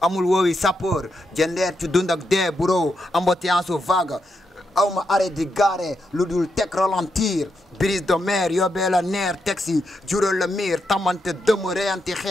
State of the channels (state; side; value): normal; both; correlation 0.83